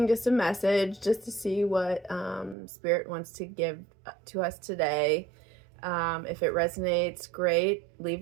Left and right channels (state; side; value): drops out; left; at 2.6 s